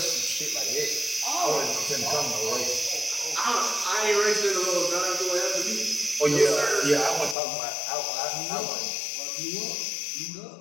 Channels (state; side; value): drops out; right; at 7.4 s